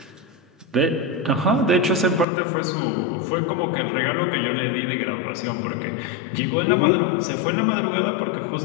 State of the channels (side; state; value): right; drops out; at 2.2 s